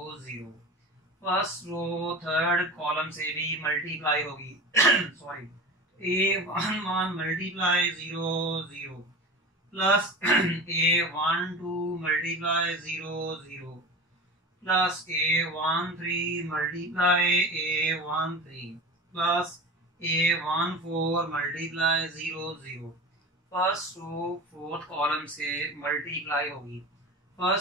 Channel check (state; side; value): normal; both; correlation 0.32